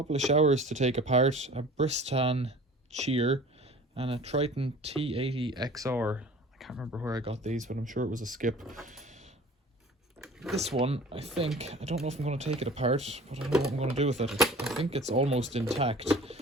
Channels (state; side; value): normal; both; correlation 0.44